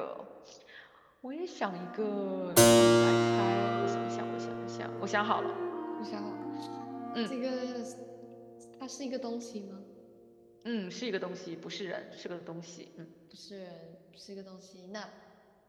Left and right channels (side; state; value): both; identical; correlation 1.00